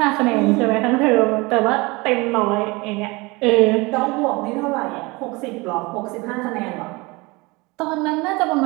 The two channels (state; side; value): quieter; left; 24.6 dB